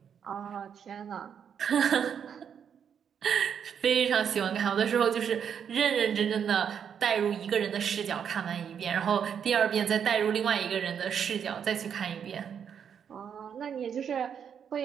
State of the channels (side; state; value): left; quieter; 7.8 dB